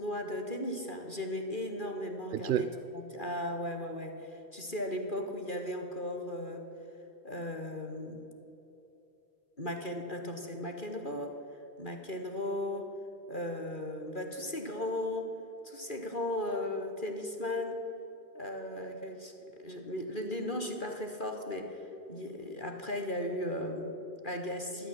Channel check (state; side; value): late; right; 2.4 ms